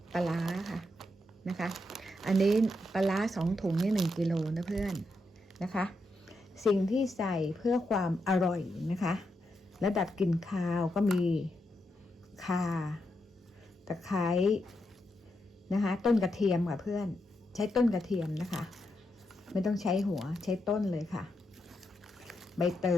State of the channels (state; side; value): normal; both; correlation 0.83